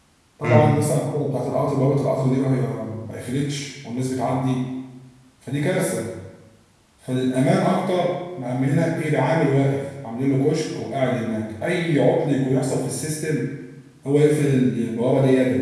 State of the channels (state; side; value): identical; both; correlation 1.00